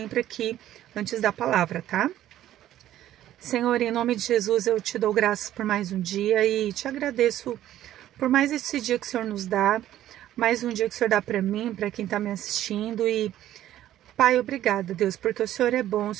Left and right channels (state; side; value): quieter; left; 12.8 dB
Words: aqui antes da palavra, tá? Senhor, em nome de Jesus, eu te dou graças por mais um dia e te agradeço por mais esse dia que o Senhor nos dá, mais um dia que o Senhor dá para mim, para quem está me assistindo. E Pai, obrigada, Deus, porque o Senhor é bom, o